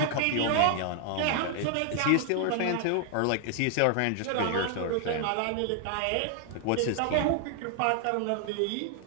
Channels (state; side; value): different; both; correlation 0.00